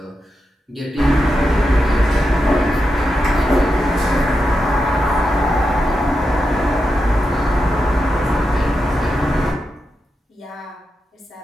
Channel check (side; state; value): both; normal; correlation 0.88